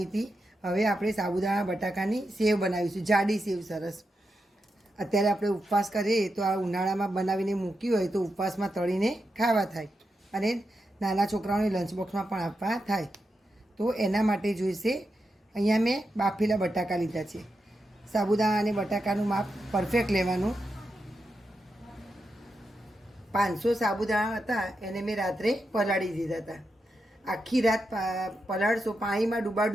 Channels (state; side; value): normal; both; correlation 0.87